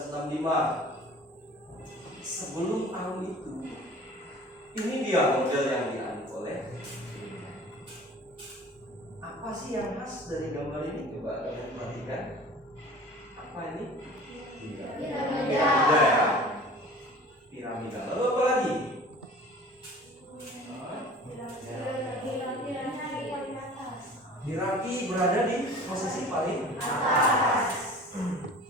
Sebelum tahun itu, ini dia model yang dianut oleh gereja. Apa sih yang khas dari gambar ini? Coba kalian perhatikan. Apa ini? Piramida. Piramida. Lalu apa lagi? Hierarki berada di posisi paling Atas.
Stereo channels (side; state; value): both; normal; correlation 0.43